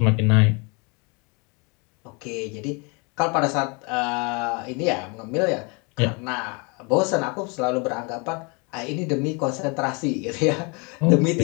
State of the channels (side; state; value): right; quieter; 31.4 dB